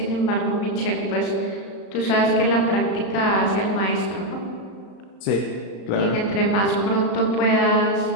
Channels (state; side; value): late; right; 35 ms